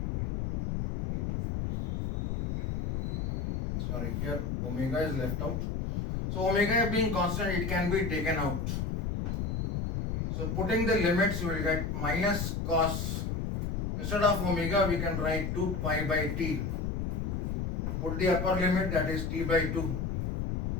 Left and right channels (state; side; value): noise; left; rumble, 1 dB below the sound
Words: Sorry, here omega is left out. So omega being constant, it can be taken out. So putting the limits, we will get minus cos, instead of omega we can write 2 pi by t. Put the upper limit, that is t by 2,